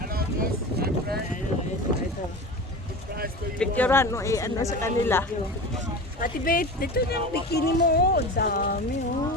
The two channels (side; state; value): both; normal; correlation 0.31